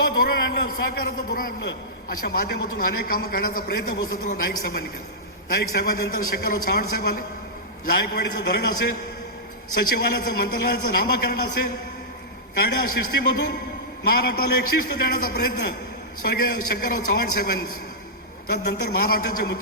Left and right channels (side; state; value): both; normal; correlation -0.13